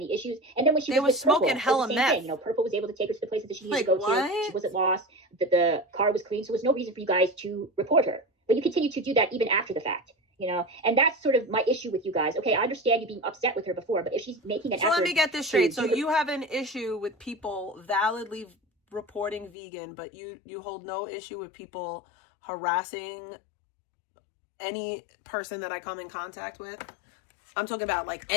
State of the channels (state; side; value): drops out; right; at 19.5 s